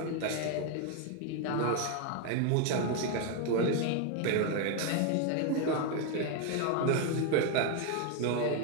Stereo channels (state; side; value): different; both; correlation 0.01